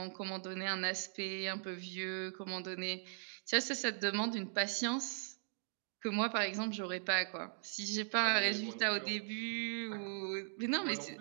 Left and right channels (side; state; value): left; silent; digital silence